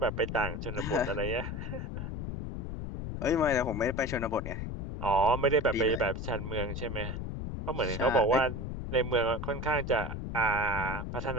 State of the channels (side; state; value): left; noise; rumble, 5 dB below the sound